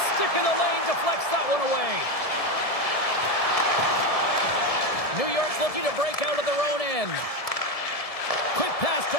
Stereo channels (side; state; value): right; late; 1.7 ms